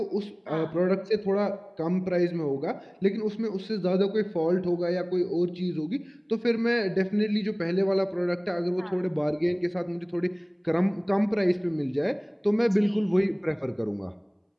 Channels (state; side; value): identical; both; correlation 1.00